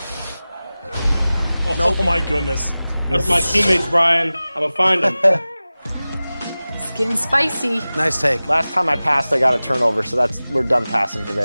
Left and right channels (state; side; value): inverted; both; correlation -0.97